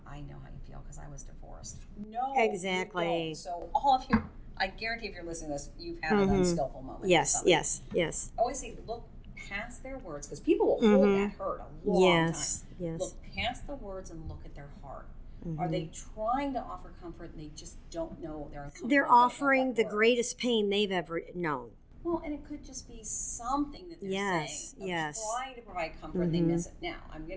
I know how you feel because I was divorced. No, exactly. You don't. So all of you, I guarantee if you're listening to this, you've had an unskillful moment. Yes, yes, yes. I always say, look past their words, because people will hold that hurt a long yes, time. Yes. Look past the words and look at their heart. Are they trying to offer comfort and they just don't know they're uncomfortable? They're offering the greatest pain they've ever known. Well, and it could just be something that they're saying. Yes. Trying to provide comfort and they miss it. Now, I'm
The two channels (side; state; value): both; identical; correlation 1.00